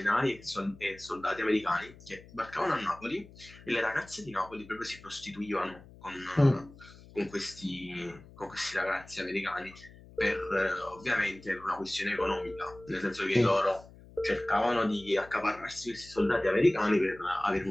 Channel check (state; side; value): noise; left; hum, 21 dB below the sound